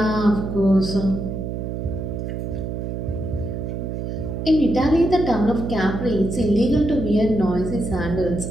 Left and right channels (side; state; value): right; noise; hum, 4 dB below the sound